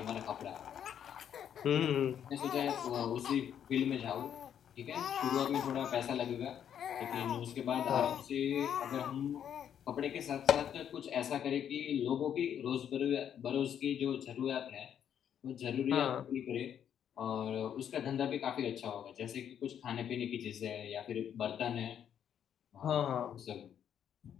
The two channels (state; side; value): quieter; right; 9.1 dB